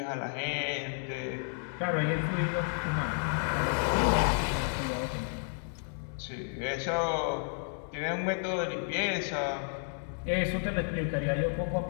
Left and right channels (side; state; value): right; silent; 57 dB below the other